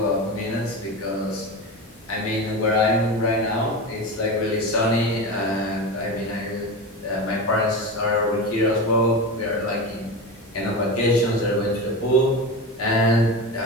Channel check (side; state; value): both; normal; correlation 0.24